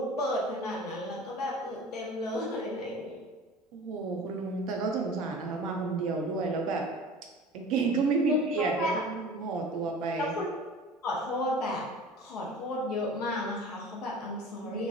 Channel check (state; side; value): normal; both; correlation 0.40